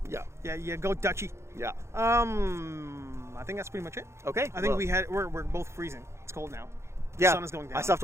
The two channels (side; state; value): left; late; 0.13 ms